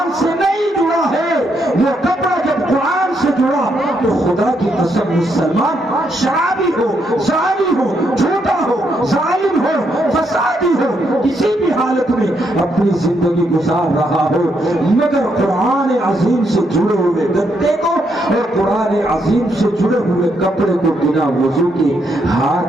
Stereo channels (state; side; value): normal; both; correlation 0.77